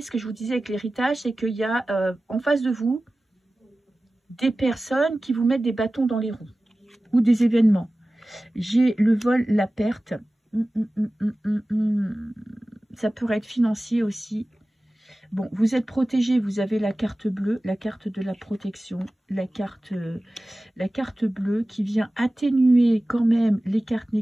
ce que je vous disais avec l'héritage, c'est qu'il y a en face de vous, des personnes qui vous mettent des bâtons dans les roues ou des événements. J'ai le vol, la perte. Ça pourrait être financier aussi. Bon, vous êtes protégé, vous avez la carte bleue, la carte de la protection, la carte bleue qui vient atténuer quand même les cartes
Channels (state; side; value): normal; both; correlation 0.96